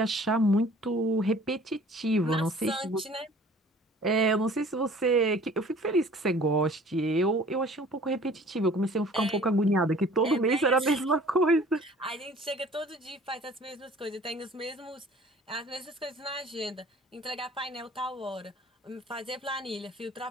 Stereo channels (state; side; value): normal; both; correlation 0.50